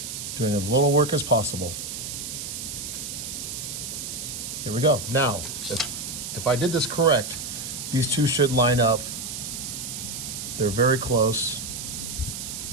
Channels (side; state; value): right; noise; hiss, 6 dB below the sound